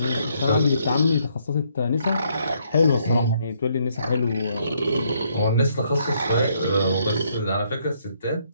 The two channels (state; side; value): inverted; both; correlation -0.71